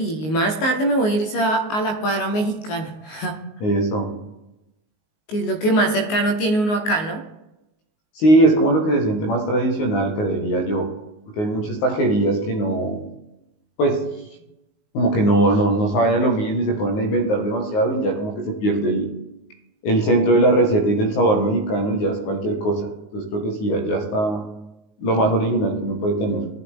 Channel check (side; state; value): right; late; 19 ms